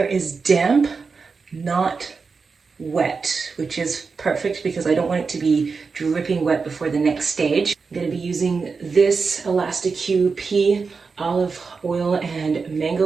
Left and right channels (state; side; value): quieter; left; 4.9 dB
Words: is damp, not wet, which is perfect because I don't want it to be dripping wet before the next stage. I'm going to be using this Elastic QP olive oil and